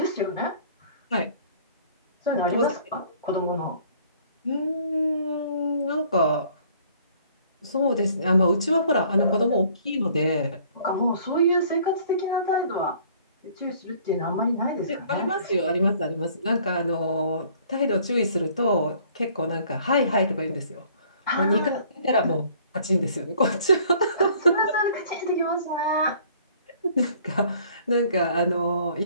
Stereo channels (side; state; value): both; inverted; correlation -0.56